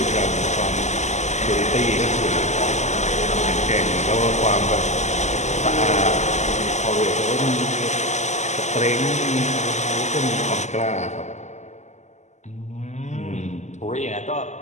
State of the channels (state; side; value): late; right; 0.33 ms